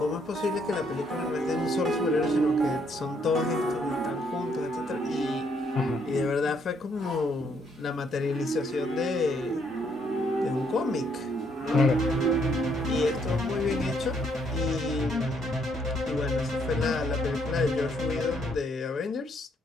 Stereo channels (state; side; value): normal; both; correlation 0.70